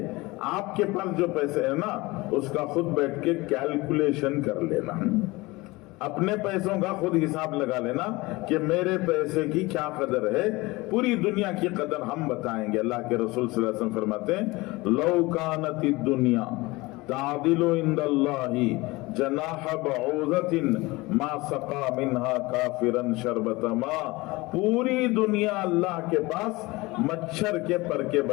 آپ کے پاس جو پیسے ہیں نا اس کا خود بیٹھ کے کیلکولیشن کر لینا، اپنے پیسوں کا خود حساب لگا لینا کہ میرے پیسے کی کیا قدر ہے. پوری دنیا کی قدر ہم بتائیں گے. اللہ کے رسول صلی اللہ علیہ وسلم فرماتے ہیں لو کانت الدنیا تعدل عند اللہ جناح بعوضۃ ما سقا منها کافرا شربۃ ماء. پوری دنیا اللہ کے پاس مچھر کے پر کے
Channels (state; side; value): quieter; right; 22.1 dB